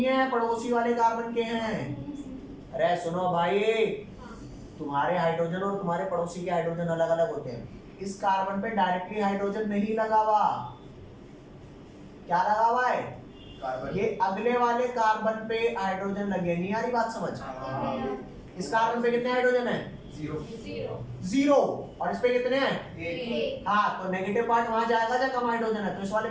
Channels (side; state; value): both; identical; correlation 1.00